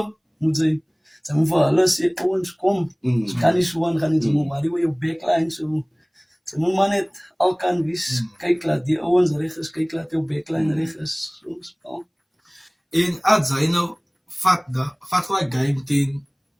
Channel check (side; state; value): both; identical; correlation 1.00